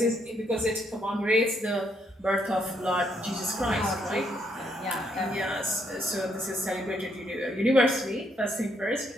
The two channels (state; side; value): normal; both; correlation 0.74